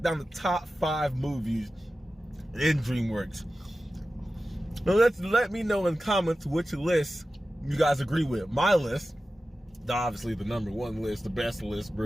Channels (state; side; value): normal; both; correlation 0.94